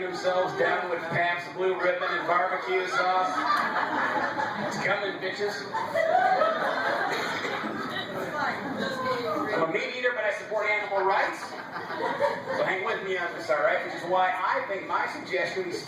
down with Pabst Blue Ribbon and barbecue sauce. It's coming, bitches. I'm a meat eater, but I support animal rights. So hang with me on this, all right? Which is why I think my suggestion we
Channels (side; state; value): both; identical; correlation 1.00